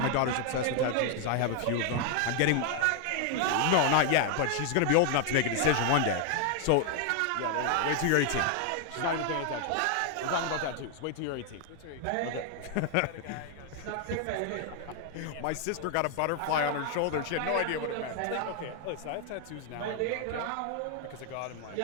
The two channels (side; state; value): both; different; correlation 0.00